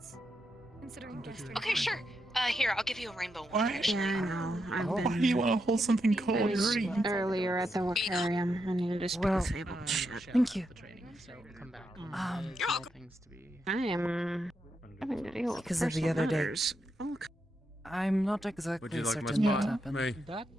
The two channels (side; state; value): both; normal; correlation 0.83